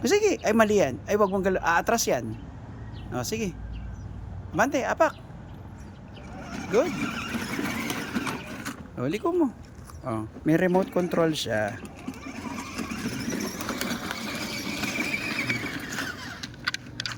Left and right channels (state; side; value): identical; both; correlation 1.00